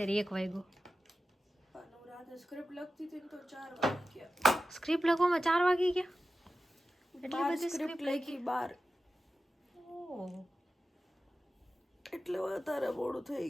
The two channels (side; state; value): both; normal; correlation 0.93